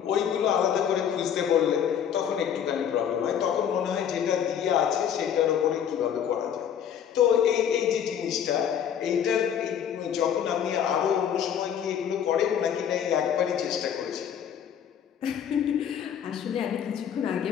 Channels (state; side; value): quieter; right; 8.8 dB